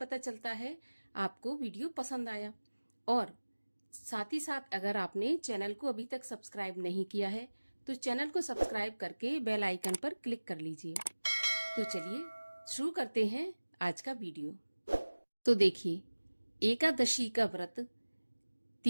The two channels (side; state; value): both; inverted; correlation -1.00